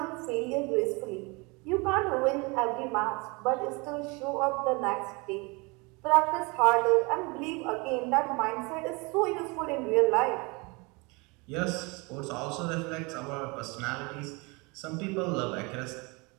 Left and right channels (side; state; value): left; quieter; 27.8 dB